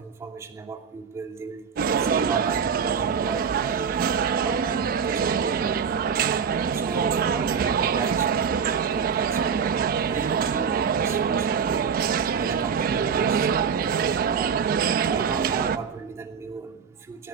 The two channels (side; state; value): left; quieter; 6.6 dB